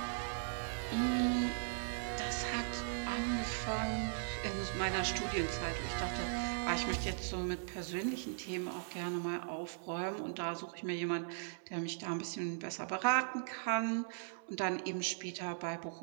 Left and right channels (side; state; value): left; silent; 52 dB below the other